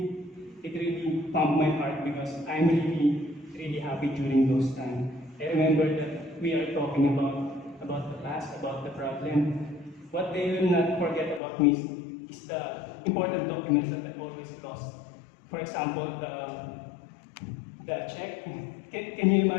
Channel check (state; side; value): drops out; right; at 11.4 s